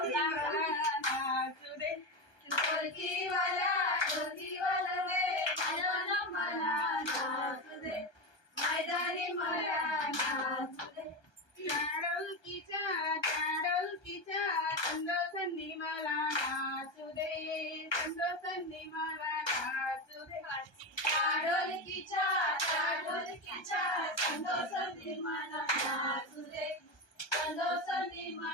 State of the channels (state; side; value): late; right; 1.2 ms